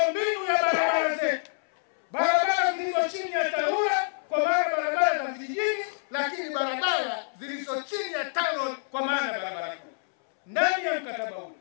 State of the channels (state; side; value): silent; right; 59 dB below the other